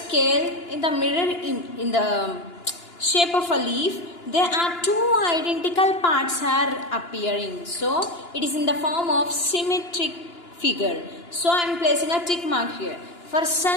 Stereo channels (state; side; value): late; right; 2.9 ms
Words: in the mirror in the shape of a leaf, there are two identical parts are appearing. So it is in the form of symmetric figure. So I am placing a tick mark here. For